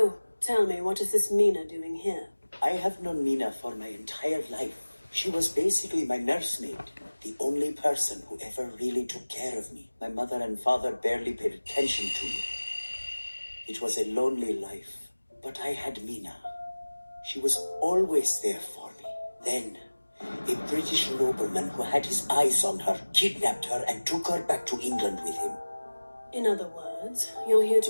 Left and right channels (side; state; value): both; inverted; correlation -1.00